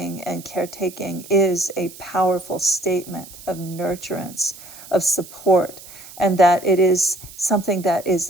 and caretaking is a powerful statement of nurturance, of support, and that it is something that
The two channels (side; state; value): right; noise; hiss, 17 dB below the sound